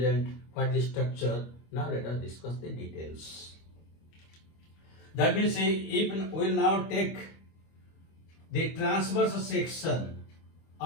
what is structure. Now let us discuss the details. That means if we will now take the transverse section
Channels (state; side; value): late; right; 25 ms